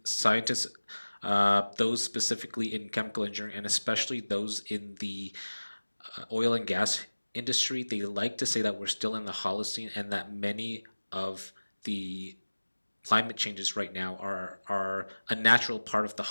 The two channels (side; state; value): both; inverted; correlation -1.00